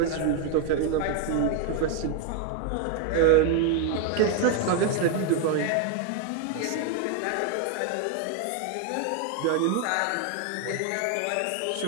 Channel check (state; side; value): different; both; correlation 0.01